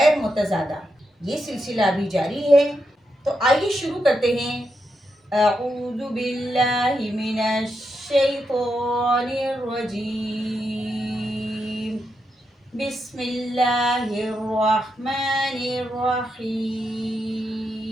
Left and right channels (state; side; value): normal; both; correlation 0.84